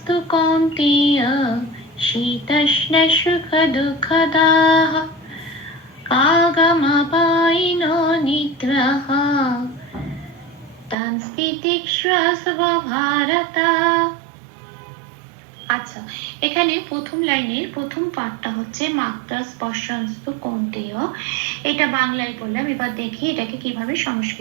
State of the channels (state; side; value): drops out; left; at 11.0 s